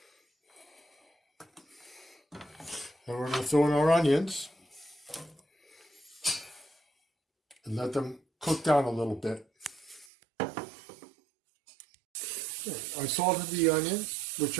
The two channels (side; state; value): left; drops out; at 10.1 s